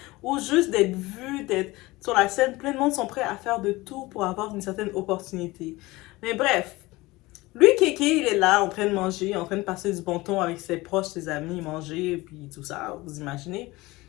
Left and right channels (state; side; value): quieter; right; 20.7 dB